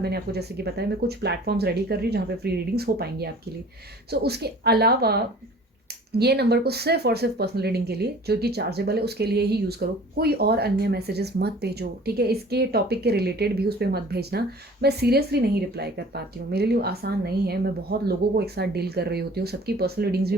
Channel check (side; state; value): both; normal; correlation 0.47